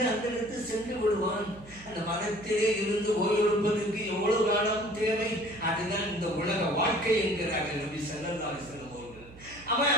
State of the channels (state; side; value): noise; right; hum, 20 dB below the sound